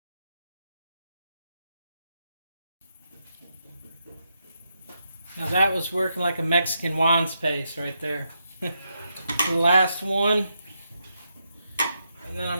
Now that was working like a Mexican Juan's paste right there. The last one. And then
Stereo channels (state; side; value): inverted; both; correlation -0.82